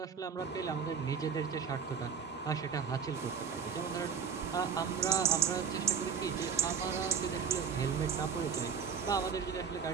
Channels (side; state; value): left; quieter; 6.6 dB